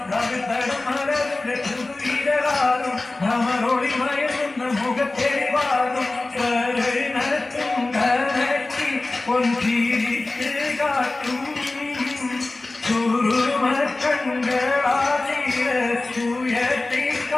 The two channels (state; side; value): quieter; right; 3.1 dB